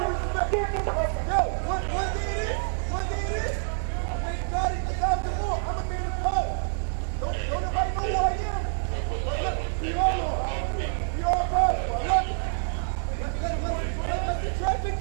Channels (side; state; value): left; silent; 57 dB below the other